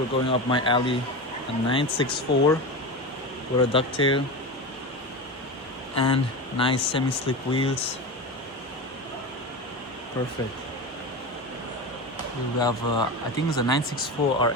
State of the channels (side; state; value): both; normal; correlation 0.23